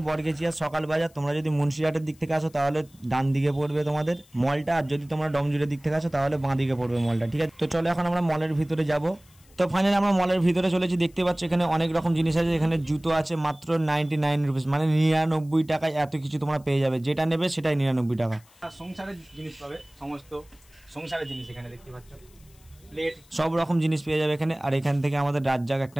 বরগেছিয়া সকাল বাজার। তোমরা যদি মুন্সিরহাটের দিক থেকে আসো তাহলে ডান দিকে পড়বে তোমাদের মলটা, আর যদি তোমরা ডমজুরের দিক থেকে আসো তাহলে বাঁ দিকে পড়বে মলটা। ঠিক আছে, তো চলো এখন আমরা মলের ভিতরে যাব। তো ফাইনালি আমরা মলের ভিতরে চলেছি। দেখতে পাচ্ছ এখানে অনেক রকম জিনিস আছে। এখানে জুতো আছে মাত্র 99 রুপিস, মানে 99 টাকায় এত কিছু তোমরা পেয়ে যাবে। যেটা নেবে সেটাই 99 টাকা। সংসারের জিনিস পাবে, সমস্ত সংসারের জিনিস এখানে দেখতে পাচ্ছ, সব রকম জিনিস পেয়ে যাবে এখানে। আর এখান থেকে আমাদের রাজ্জাক একটা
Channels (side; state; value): left; noise; hiss, 29 dB below the sound